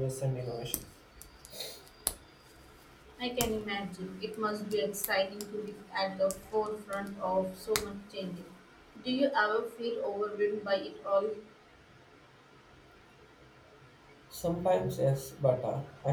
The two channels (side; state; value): both; identical; correlation 1.00